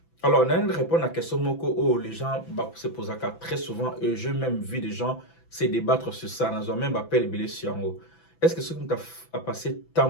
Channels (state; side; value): late; right; 6.0 ms